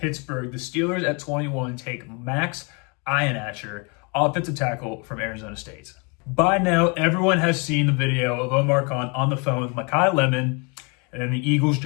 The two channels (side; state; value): right; quieter; 32.4 dB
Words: the Steelers at 21 take Max Ihenacher, offensive tackle from Arizona State. By now, everyone has seen the video of Omar Khan on the phone with Mekhi Lemon, and then the Eagles